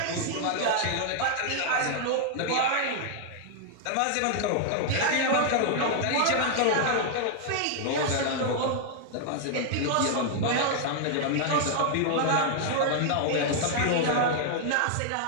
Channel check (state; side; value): different; both; correlation 0.00